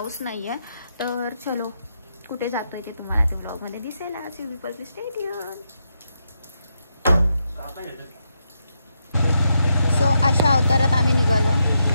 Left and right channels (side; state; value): both; inverted; correlation -0.83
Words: नाही आहे. तर चलो कुठे जातोय ते तुम्हाला त्या व्लॉगमध्ये दिसेल. आज यू स्टे ट्यून. सो अशा अवतारात आम्ही निघालो,